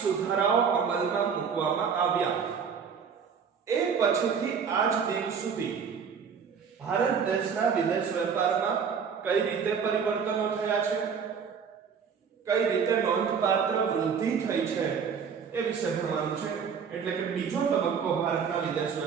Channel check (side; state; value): left; quieter; 6.5 dB